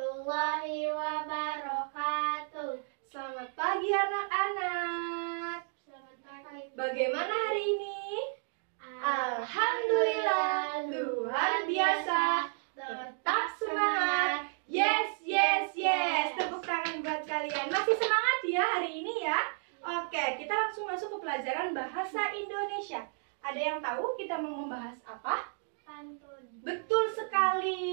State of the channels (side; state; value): left; silent; 56 dB below the other